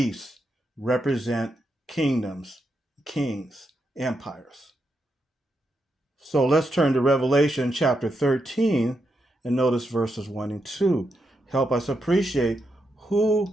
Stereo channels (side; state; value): both; normal; correlation 0.84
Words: represent kingdoms, kings, empires. So let's turn to Revelation chapter 13 and notice verses 1 and 2. Help us appreciate